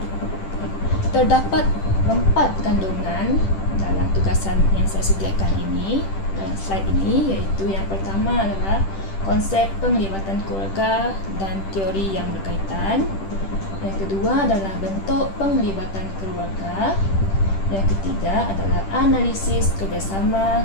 Terdapat 4 kandungan dalam tugasan yang saya sediakan ini dalam slide ini, iaitu yang pertama adalah konsep penglibatan keluarga dan teori yang berkaitan. Yang kedua adalah bentuk penglibatan keluarga. Yang ketiga adalah analisis kerjasama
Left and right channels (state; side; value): late; right; 10 ms